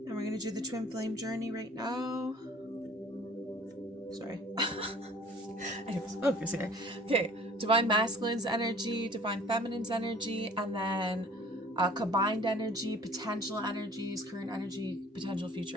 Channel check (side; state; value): both; normal; correlation 0.51